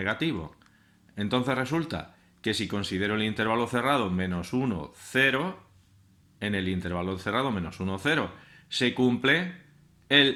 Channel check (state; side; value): identical; both; correlation 1.00